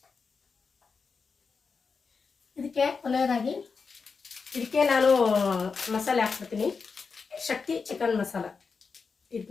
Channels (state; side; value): quieter; right; 5.1 dB